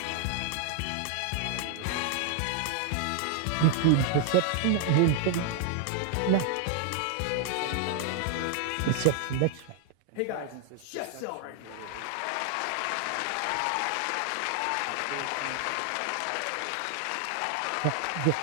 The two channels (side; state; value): both; different; correlation 0.00